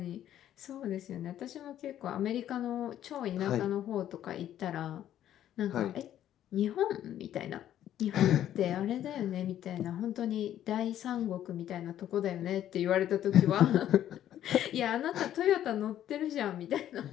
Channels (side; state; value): right; quieter; 11.5 dB